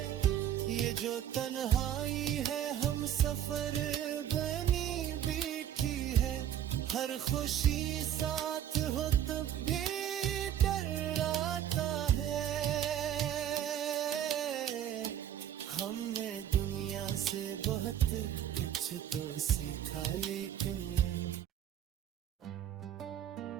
मुसाफिर बनी बैठी है, हर खुशी साथ हो तब भी डर आता है। हमने दुनिया से बहुत कुछ तो सीखा, लेकिन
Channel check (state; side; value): quieter; left; 10.5 dB